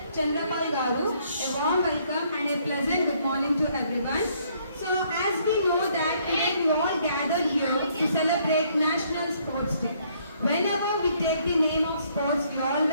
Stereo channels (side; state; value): both; inverted; correlation -0.67